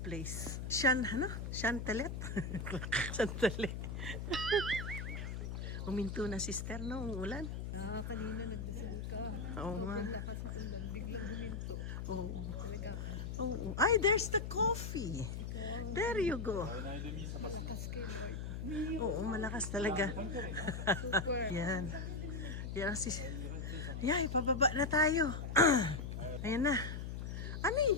place. Chantelet? Chantelet. Uminto na, sister, no? Ang ulan. Kanina nagdasal ka. Oo nga. Lakas sa ulan, biglang huminto. Oo. Talaga. Oo. Ay, there's the coffee. There you go. Malakas kayo, Lord. Oo, malakas talaga. Super. Yan. Yan si... Yay, pababa na tayo. Ayan na. Ano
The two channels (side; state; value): left; noise; hum, 5 dB below the sound